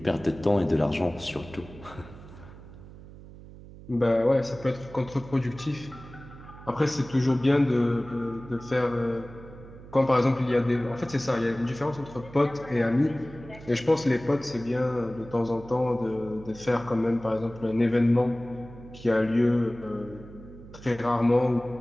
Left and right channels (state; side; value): noise; right; hum, 17 dB below the sound